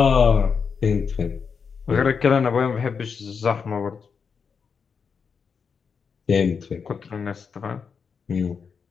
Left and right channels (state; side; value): quieter; right; 6.0 dB